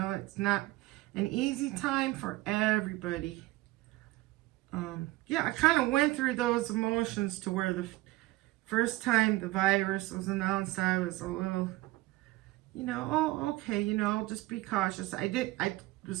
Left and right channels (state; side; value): quieter; left; 19.0 dB